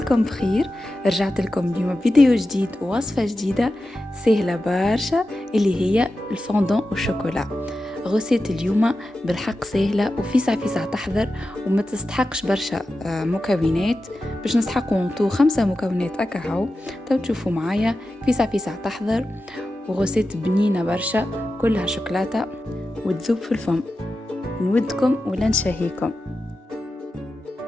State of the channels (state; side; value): normal; both; correlation 0.92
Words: بخير. رجعت لكم اليوم فيديو جديد ووصفة جديدة سهلة برشا اللي هي الفوندون والشوكولا. غسيت اليوم بالحق سهلة وفيسع فيسع تحضر وما تستحقش برشا مكونات. باش نستحقوا نطو 5 مكونات اكاهو. تو تشوفوا معايا فيسع فيسع تحضر وغسيت بنينة برشا كلها شوكولاتة وتذوب في الفم. نودكم ولا نشهيكم.